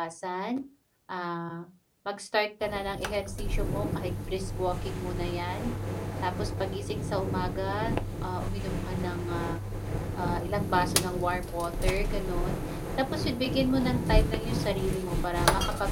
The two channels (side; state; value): both; identical; correlation 1.00